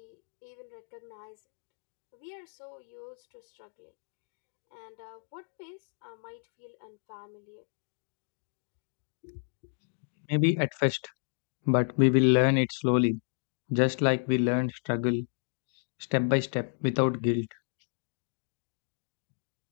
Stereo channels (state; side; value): silent; right; digital silence